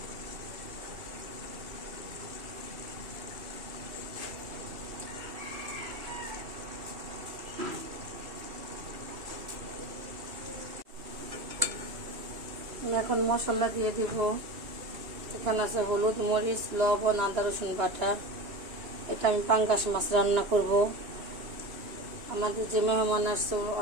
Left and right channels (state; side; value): late; left; 2.9 ms